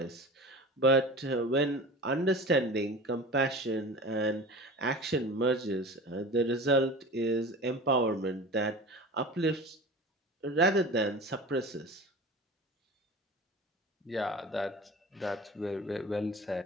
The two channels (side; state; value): both; normal; correlation 0.35